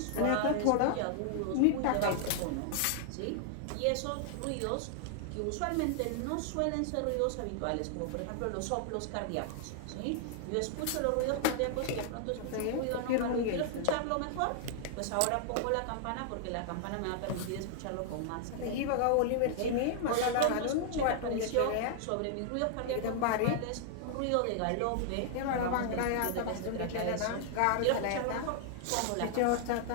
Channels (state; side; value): different; both; correlation 0.00